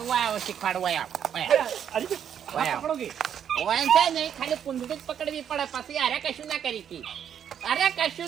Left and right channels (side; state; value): left; quieter; 8.8 dB